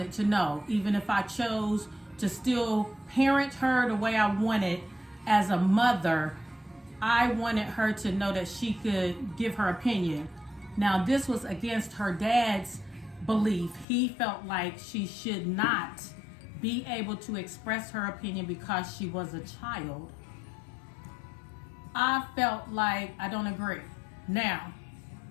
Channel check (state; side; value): drops out; right; at 13.9 s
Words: to know, even if I chose to still parent her the way I wanted as a mother, I wanted her to know that she could give her opinion. Now, this was against her dad's belief. He felt like she should not be able to express her opinion because she was a child. I felt like I don't agree. Now,